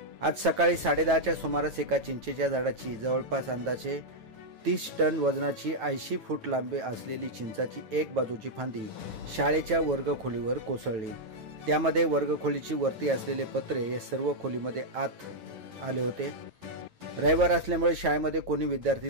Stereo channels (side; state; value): left; late; 9.1 ms